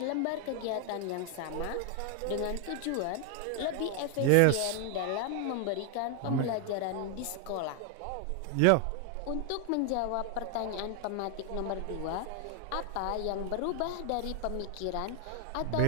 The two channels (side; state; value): both; different; correlation 0.00